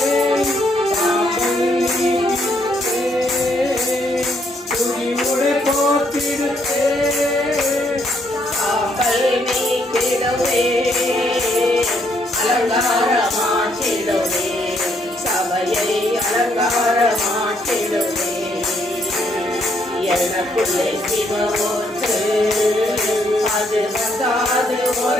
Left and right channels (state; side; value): normal; both; correlation 0.72